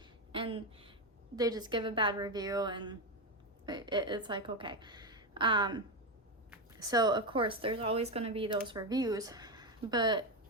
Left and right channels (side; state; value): both; normal; correlation 0.11